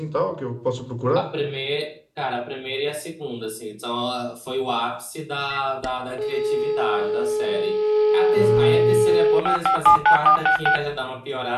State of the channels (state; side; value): identical; both; correlation 1.00